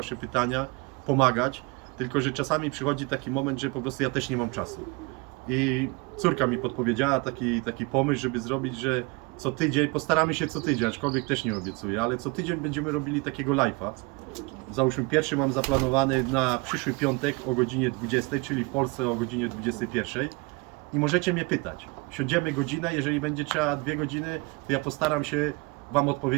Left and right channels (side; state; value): left; quieter; 27.3 dB